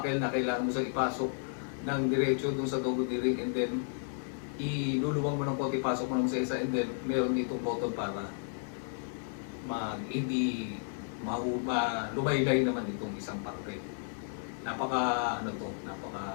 na kailangan mo siyang ipasok ng diretso doon sa double D ring and then iluluwang mo ng konti, pasok mo ng sa isa and then meron dito button para hindi lumaylay naman itong isang parte. Napaka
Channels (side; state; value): right; silent; 56 dB below the other